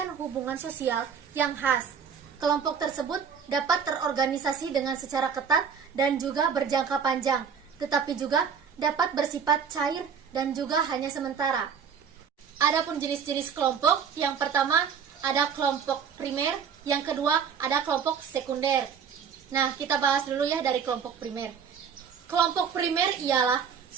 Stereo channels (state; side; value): quieter; left; 6.9 dB